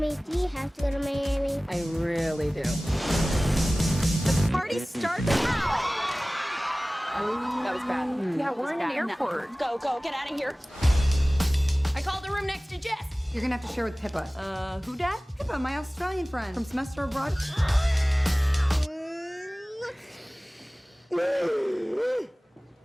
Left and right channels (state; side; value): normal; both; correlation 0.98